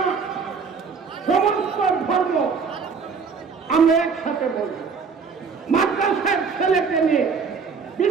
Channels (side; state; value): left; quieter; 5.5 dB